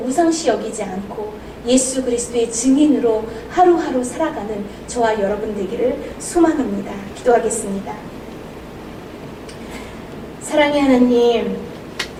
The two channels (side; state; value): both; identical; correlation 1.00